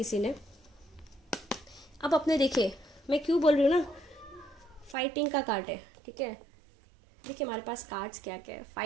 ने। अब अपने देखिए मैं क्यों बोल रही हूँ ना, फाइटिंग का कार्ड है, ठीक है। देखिए हमारे पास कार्ड्स क्या क्या है,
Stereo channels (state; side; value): drops out; left; at 5.0 s